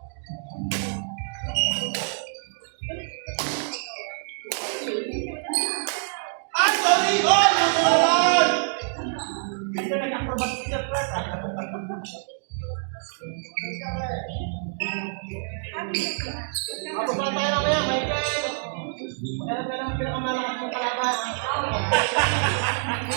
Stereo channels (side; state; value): left; silent; digital silence